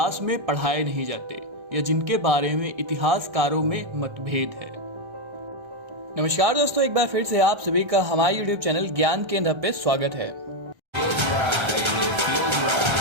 में पढ़ाए नहीं जाते या जिनके बारे में इतिहासकारों में मतभेद है। नमस्कार दोस्तों, एक बार फिर से आप सभी का हमारे YouTube चैनल ज्ञान केंद्र पे स्वागत है।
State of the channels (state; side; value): late; left; 1.3 ms